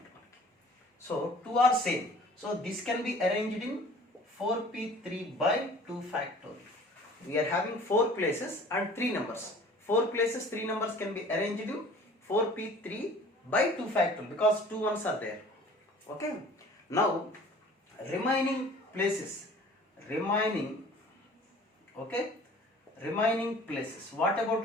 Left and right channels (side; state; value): both; normal; correlation 0.48